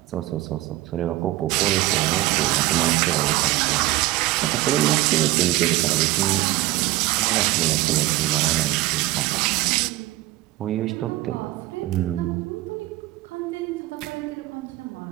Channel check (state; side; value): quieter; left; 17.6 dB